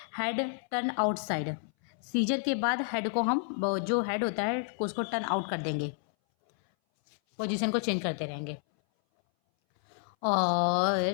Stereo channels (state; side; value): silent; right; 58 dB below the other